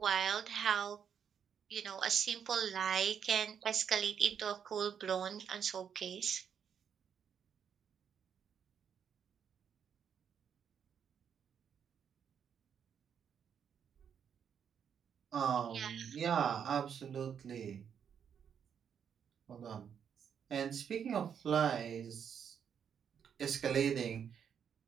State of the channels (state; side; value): quieter; left; 7.9 dB